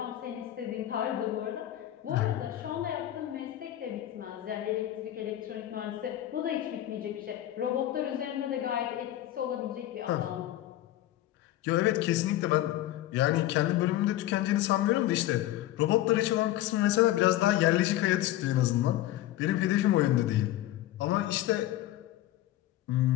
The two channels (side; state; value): right; quieter; 14.1 dB